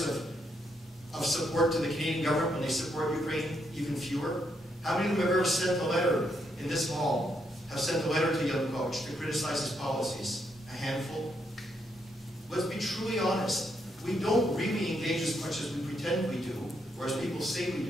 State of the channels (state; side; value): normal; both; correlation 0.77